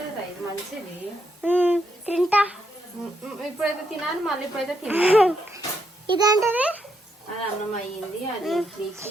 ఇది మంచిది. తింటా. ఇప్పుడైతే తినాలి, మళ్ళీ ఇప్పుడైతే తినాలి. ఇదేంటది? అది అన్నం అయ్యింది. అది ఇడ్లీకి,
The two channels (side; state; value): both; normal; correlation 0.78